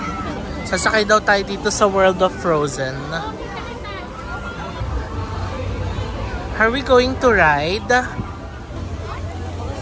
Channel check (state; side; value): identical; both; correlation 1.00